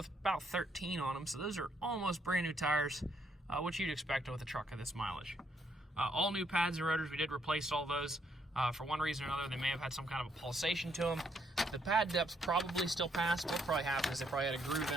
about 13 on them, so those are almost brand new tires, which you'd expect with a truck of this mileage. All new pads and rotors, we did replace all those. For one reason or another, they may have had some kind of a pulsation to them. The pad depths probably still pass. What probably happened is they probably had a groove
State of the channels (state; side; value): normal; both; correlation 0.73